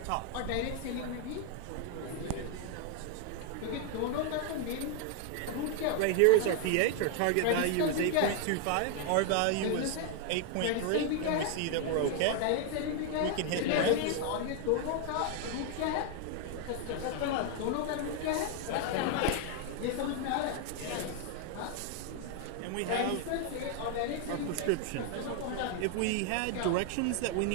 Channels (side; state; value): both; different; correlation 0.00